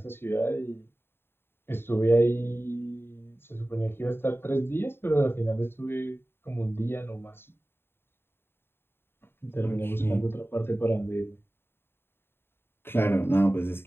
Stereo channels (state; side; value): late; right; 0.11 ms